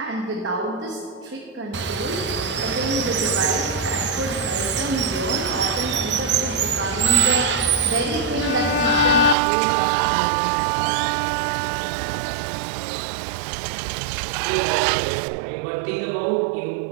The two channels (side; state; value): left; drops out; at 9.3 s